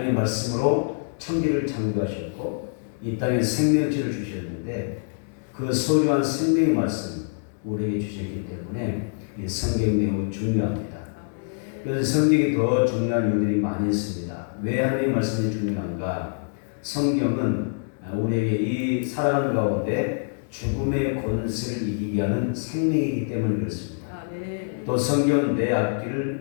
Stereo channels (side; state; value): right; silent; digital silence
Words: 말씀으로 천지를 창조하셨고 이 땅에 생명체를 주셨는데 그 소중한 생명의 말씀 우리에게 주셨기 때문에 이 성경이 매우 중요합니다. 그래서 성경이 더 중요한 이유들이 많이 있습니다. 왜 하나님의 말씀이 중요한가? 성경은 우리에게 이 살아가는 가운데 죽음의 권세를 이기게 하는 생명이기 때문에 그렇습니다. 또 성경은 내